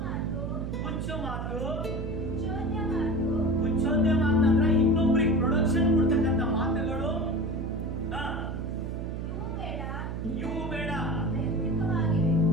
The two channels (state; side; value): noise; right; hum, 5 dB below the sound